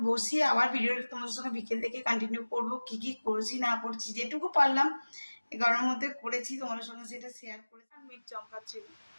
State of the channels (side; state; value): both; inverted; correlation -1.00